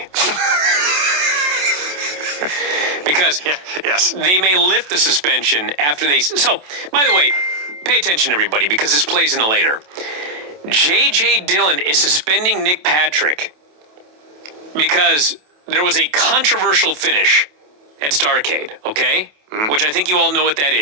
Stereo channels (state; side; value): late; left; 27 ms